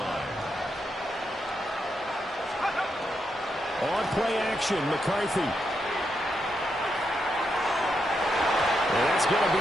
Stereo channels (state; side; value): normal; both; correlation 0.82